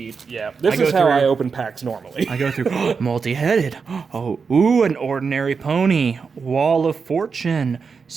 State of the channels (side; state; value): left; quieter; 5.4 dB